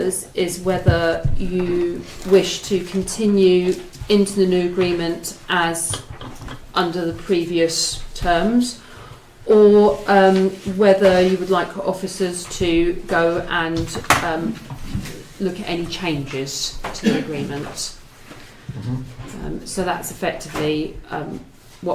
is whether you wish to continue into the new agreement as under the previous terms, or whether you would like officers to go and look at any changes to the agreement. So that's effectively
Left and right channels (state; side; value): identical; both; correlation 1.00